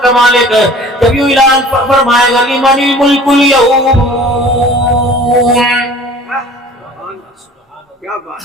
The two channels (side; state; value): both; normal; correlation 0.46